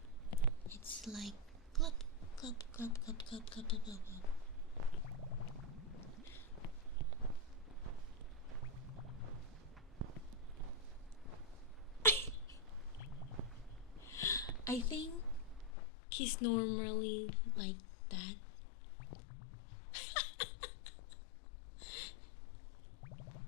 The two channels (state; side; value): drops out; right; at 15.7 s